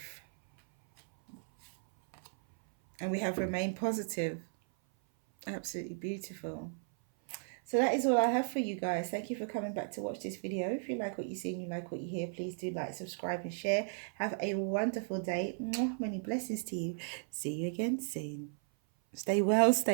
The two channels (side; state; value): left; silent; 54 dB below the other